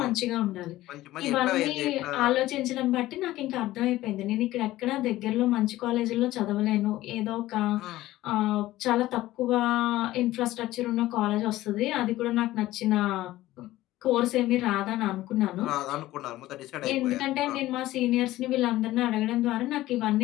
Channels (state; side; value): quieter; right; 16.1 dB